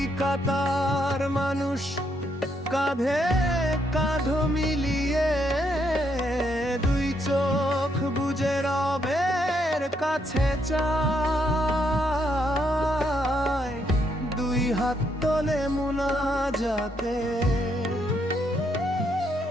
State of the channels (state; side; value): normal; both; correlation 0.75